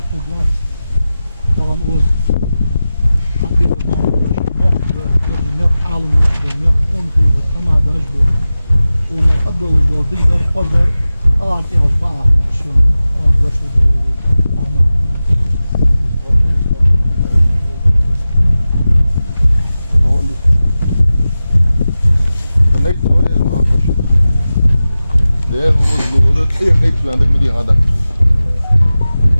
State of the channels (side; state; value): both; inverted; correlation -0.95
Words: da gəl. Tamam o bir məmurdaş, yox alım yox, on xeyri, tamadaj bu. Ona adoluz digər xodar, artıq az bağlı, şunu, başlı دي غدا